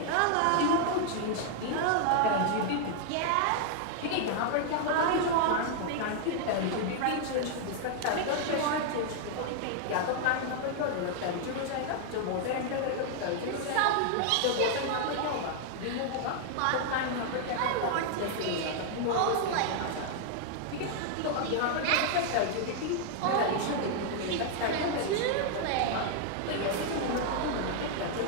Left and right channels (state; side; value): different; both; correlation 0.00